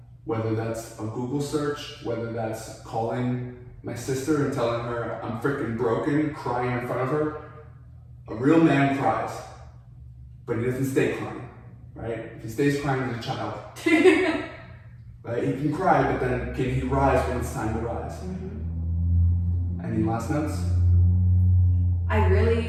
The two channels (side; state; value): both; identical; correlation 1.00